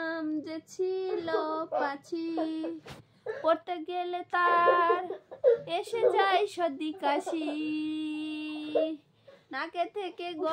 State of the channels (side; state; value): both; identical; correlation 1.00